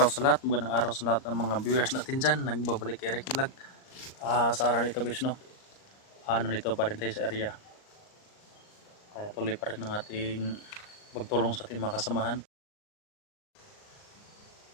sa lahat. Magandang araw sa lahat ng mga viewers natin dyan. Nagbabalik kay Ricky Vlog. Sa araw nito guys, no? Nandito pa rin tayo sa area. Kaya tuloy pa rin ng ating pagtulong sa ating mga kasamahan.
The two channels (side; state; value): right; late; 38 ms